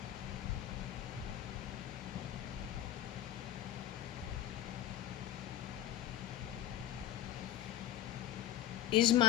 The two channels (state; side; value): quieter; right; 12.1 dB